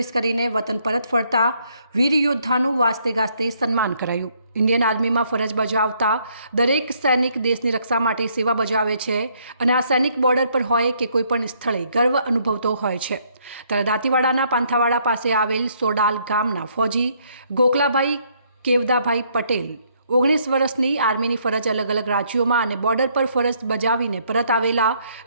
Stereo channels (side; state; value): both; inverted; correlation -0.69